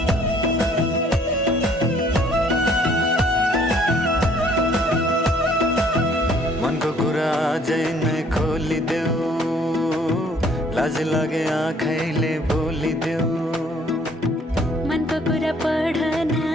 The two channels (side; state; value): both; normal; correlation 0.61